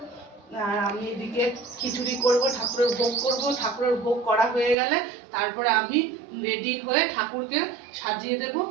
আর আমি এদিকে খিচুড়ি করব, ঠাকুরের ভোগ করব। ঠাকুরের ভোগ করা হয়ে গেলে তারপরে আমি রেডি হয়ে ঠাকুরকে সাজিয়ে দেব।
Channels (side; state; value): left; drops out; at 4.8 s